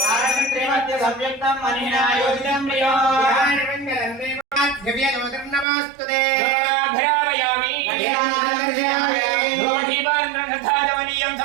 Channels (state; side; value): drops out; left; at 5.7 s